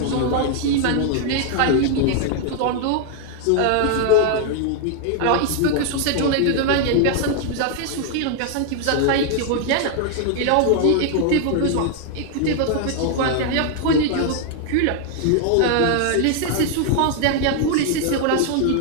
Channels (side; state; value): both; different; correlation 0.00